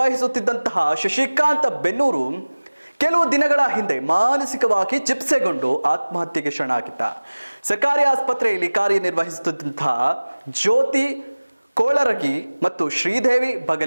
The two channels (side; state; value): both; inverted; correlation -1.00